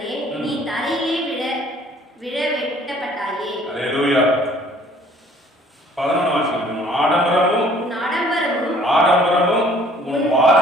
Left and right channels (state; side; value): normal; both; correlation 0.56